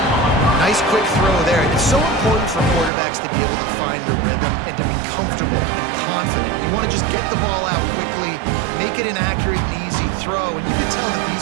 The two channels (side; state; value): left; drops out; at 2.9 s